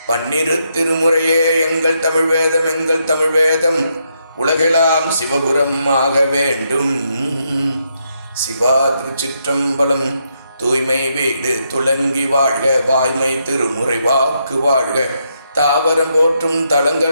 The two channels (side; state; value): both; inverted; correlation -0.78